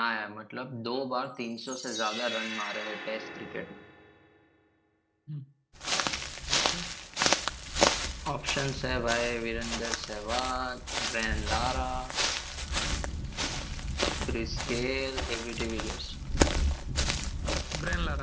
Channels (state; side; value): identical; both; correlation 1.00